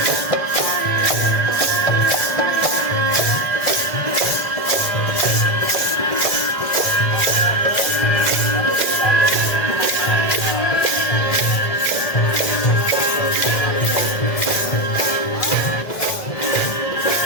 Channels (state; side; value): late; right; 1.5 ms